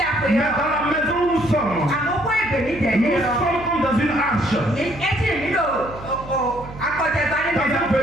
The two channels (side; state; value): right; noise; hum, 15 dB below the sound